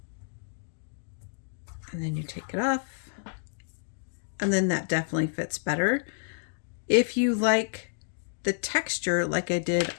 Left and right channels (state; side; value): silent; right; digital silence